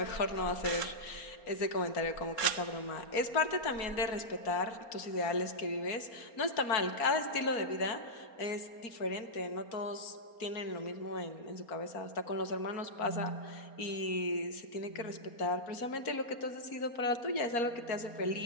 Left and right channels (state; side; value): late; right; 4.3 ms